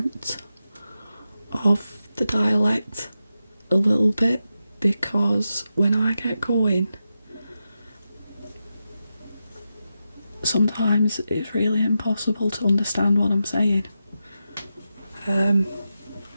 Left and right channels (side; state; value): both; inverted; correlation -0.89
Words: of the dialect a little bit, because when I get going, sometimes it's really impossible to understand what I'm saying.